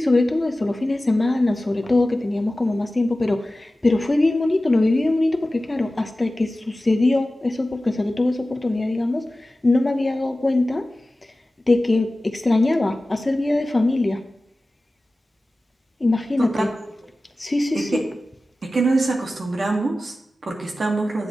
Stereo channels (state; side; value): normal; both; correlation 0.96